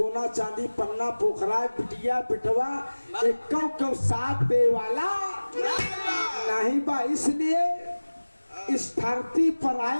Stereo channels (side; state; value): both; inverted; correlation -1.00